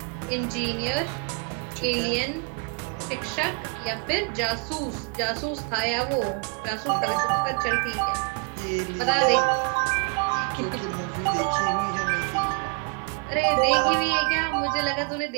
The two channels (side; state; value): left; quieter; 35.8 dB